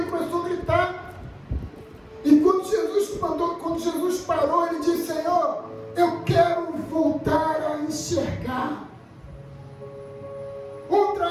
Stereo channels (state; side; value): identical; both; correlation 1.00